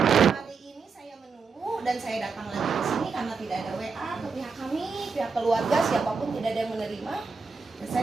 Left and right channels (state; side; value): quieter; left; 4.9 dB